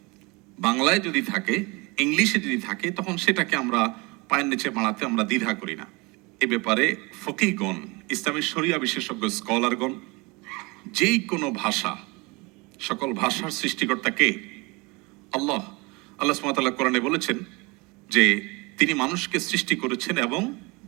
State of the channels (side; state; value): left; quieter; 26.2 dB